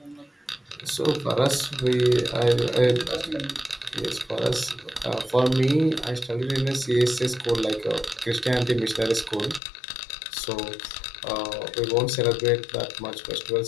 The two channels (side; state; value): right; drops out; at 9.6 s